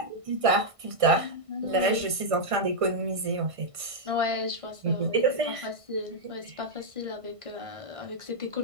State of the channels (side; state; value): left; late; 1.5 ms